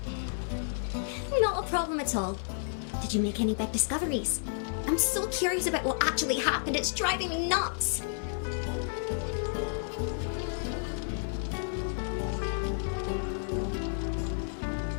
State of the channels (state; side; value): silent; right; 57 dB below the other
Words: Not a problem at all. Did you make any big discoveries? I'm so curious about what actually happened. It's driving me nuts.